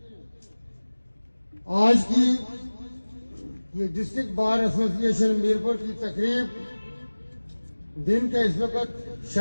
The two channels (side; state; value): both; inverted; correlation -1.00